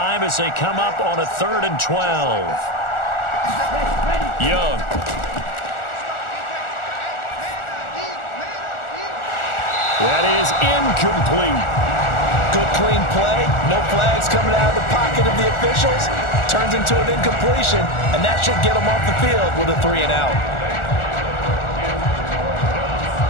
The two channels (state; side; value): late; right; 1.4 ms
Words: as they come up on a 3rd and 12. Young. That is incomplete. Good clean play. No flags coming out of the pocket of the officials. Turns into an incompletion, and that should get them off the field with a 3 and out.